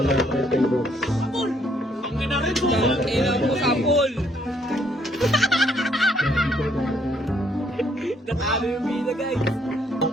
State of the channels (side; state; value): both; normal; correlation 0.68